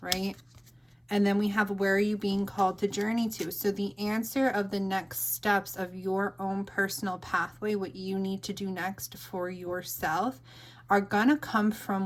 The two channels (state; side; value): identical; both; correlation 1.00